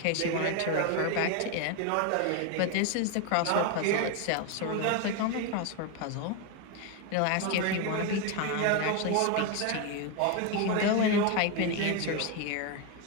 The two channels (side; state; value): both; different; correlation 0.02